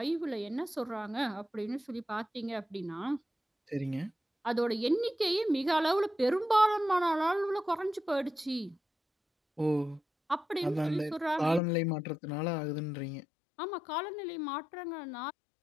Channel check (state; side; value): drops out; right; at 11.6 s